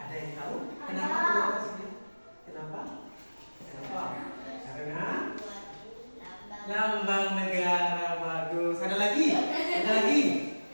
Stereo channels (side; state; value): both; inverted; correlation -1.00